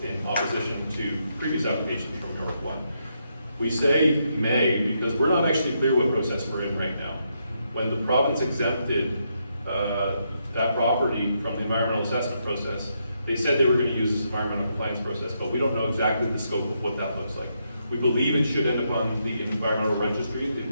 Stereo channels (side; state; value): both; inverted; correlation -0.79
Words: in opposition to previous applications from York1. We say may because we're not actually clear what process we're in right now. When the province exempted that property from the environmental assessment process, they said they were going to use this environmental compliance process, but we don't know exactly the scope of what that looks like. We believe it should end up on the environmental registry, the